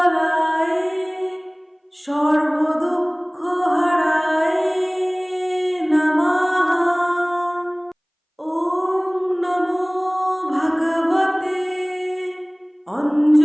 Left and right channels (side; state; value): both; identical; correlation 1.00